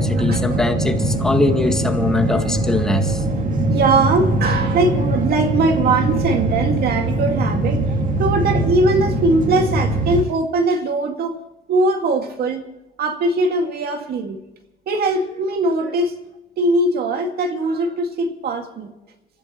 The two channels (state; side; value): normal; both; correlation 0.47